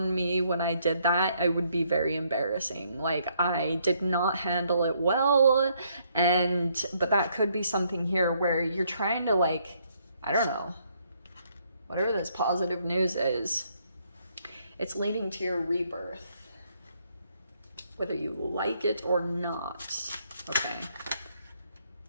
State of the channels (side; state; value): both; inverted; correlation -0.71